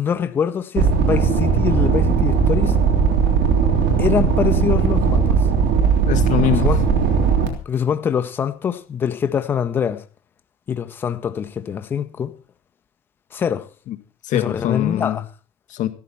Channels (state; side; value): normal; both; correlation 0.44